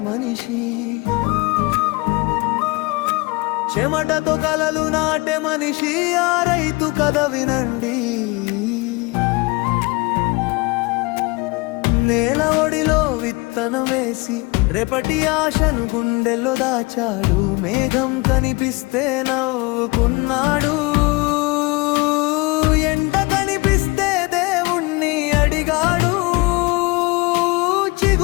మనిషి, చెమటతో కలలు నాటే మనిషి, ఆ రైతు కథ వినండి. నేల ఒడిలో విత్తనం వేసి రేపటి ఆశను గుండెల్లో దాచాడు. మేఘం కనిపిస్తే నవ్వుకున్నాడు, ఎండ కనిపిస్తే దేవుణ్ణి అడిగాడు.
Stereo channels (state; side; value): quieter; right; 25.3 dB